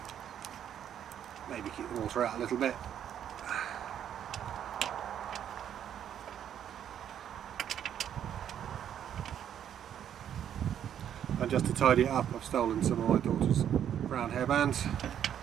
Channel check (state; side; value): quieter; left; 9.7 dB